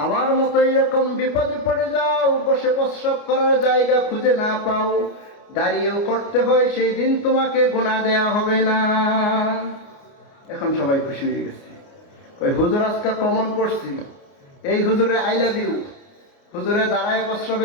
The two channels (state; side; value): late; right; 29 ms